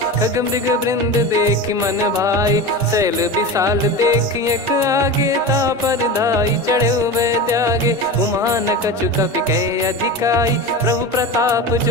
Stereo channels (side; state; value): both; normal; correlation 0.27